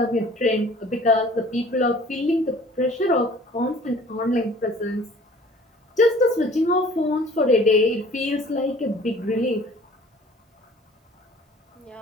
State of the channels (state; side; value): normal; both; correlation 0.50